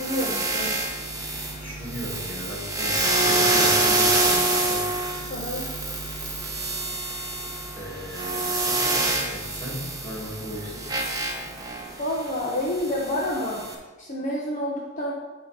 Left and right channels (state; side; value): normal; both; correlation 0.11